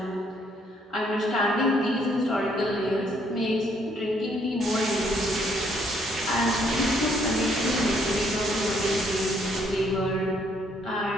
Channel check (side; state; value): both; normal; correlation 0.68